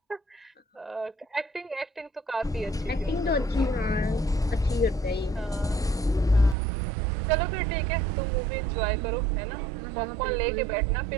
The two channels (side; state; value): left; drops out; at 6.6 s